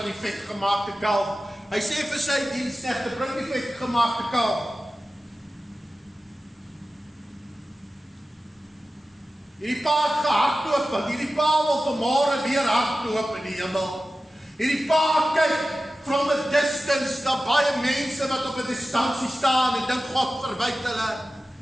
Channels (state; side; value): normal; both; correlation 0.95